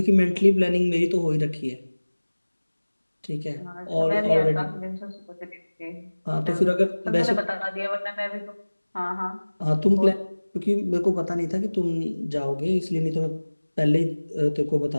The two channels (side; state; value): both; inverted; correlation -1.00